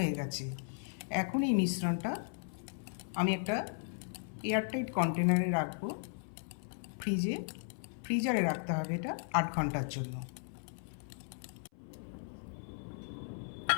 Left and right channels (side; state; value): right; silent; 54 dB below the other